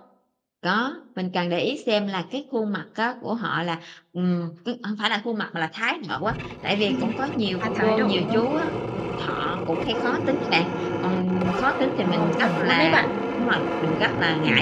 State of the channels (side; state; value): both; identical; correlation 1.00